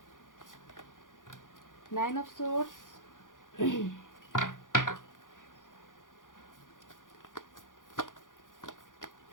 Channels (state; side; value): late; right; 0.88 ms